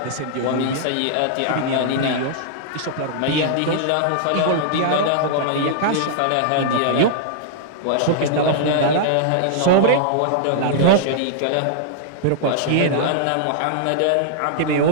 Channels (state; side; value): different; both; correlation -0.01